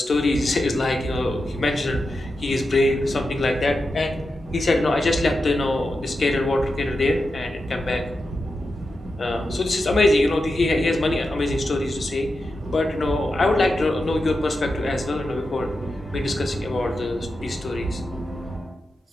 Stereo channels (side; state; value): both; normal; correlation 0.89